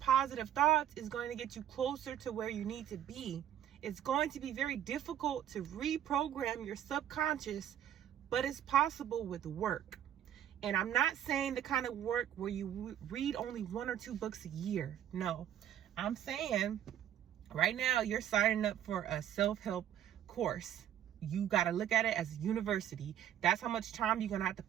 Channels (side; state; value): left; quieter; 10.7 dB